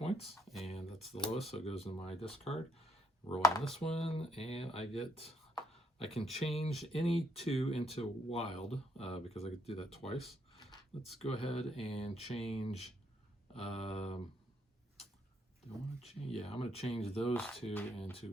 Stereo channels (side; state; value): both; normal; correlation 0.74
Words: and that's the lowest, so it goes in my discard. Rolling this one, and I can change any 2 into wild, because I could do that twice. Let's go ahead and change, do I want to change? Yeah, I'm going to change those 2